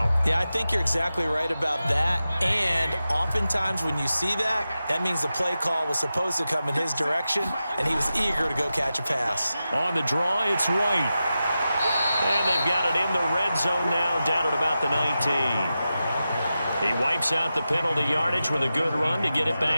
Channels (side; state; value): both; inverted; correlation -0.92